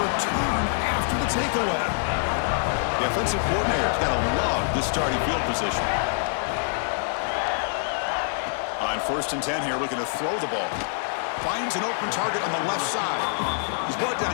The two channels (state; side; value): silent; right; digital silence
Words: after the takeaway. The offensive coordinator's got to love this starting field position. On first and 10 here, looking to throw the ball. Finds an open target on the left side. He's brought down